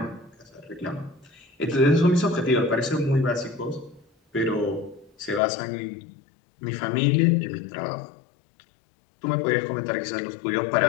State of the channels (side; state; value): right; drops out; at 5.4 s